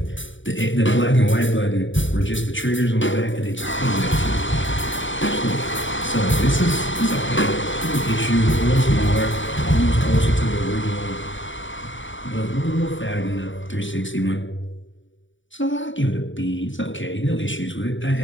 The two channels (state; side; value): late; right; 0.55 ms